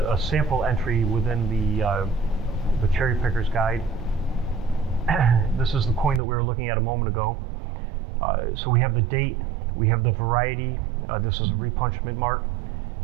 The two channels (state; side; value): drops out; left; at 6.2 s